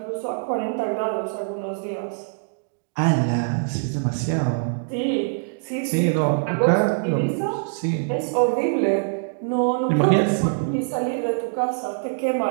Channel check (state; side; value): silent; left; digital silence